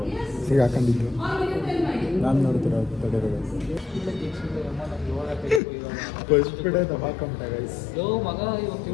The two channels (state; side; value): drops out; right; at 5.6 s